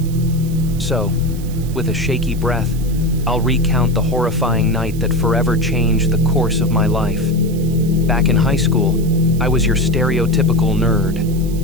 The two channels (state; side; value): noise; right; hiss, 19 dB below the sound